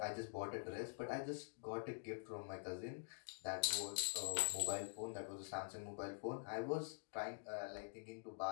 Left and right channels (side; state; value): right; silent; digital silence